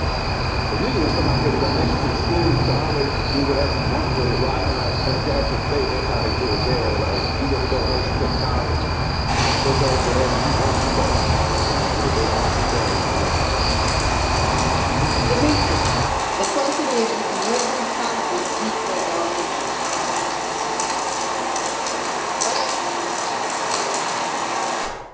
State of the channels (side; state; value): both; identical; correlation 1.00